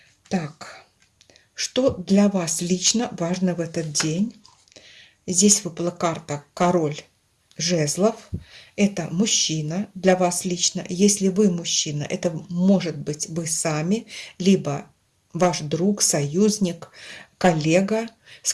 Так, что для вас лично важно в этот день? Здесь выпала карта король жезлов. Это мужчина для вас лично. Если вы мужчина, это может быть вы сами, либо ваш друг, союзник, коллега, с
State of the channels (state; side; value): identical; both; correlation 1.00